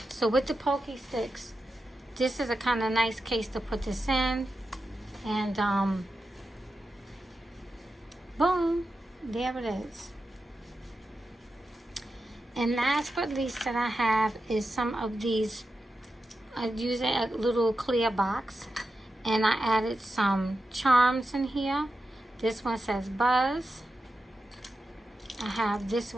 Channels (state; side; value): normal; both; correlation 0.90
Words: So with the pokey sticks, this is a kind of nice case to put this in. And boom, there it is. And last but least that I have is some of these. I used a little clear box, and I added some charms in here. This one says Buzz. I have this